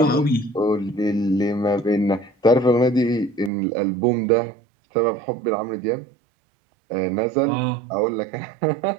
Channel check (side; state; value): left; drops out; at 3.5 s